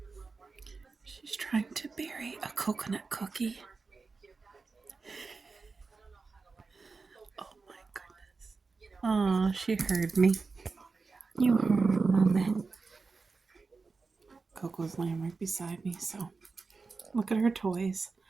She's trying to bury a coconut cookie. Oh my goodness. Oh, she heard me. You heard Mama. Coco's laying right beside me, so look at her toys.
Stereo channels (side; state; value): left; quieter; 4.3 dB